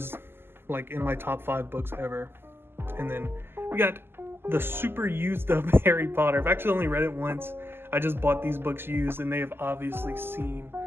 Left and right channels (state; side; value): late; left; 0.11 ms